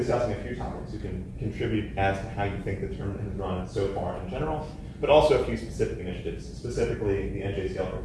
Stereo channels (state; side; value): identical; both; correlation 1.00